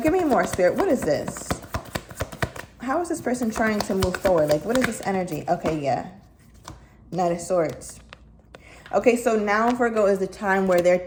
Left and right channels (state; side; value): identical; both; correlation 1.00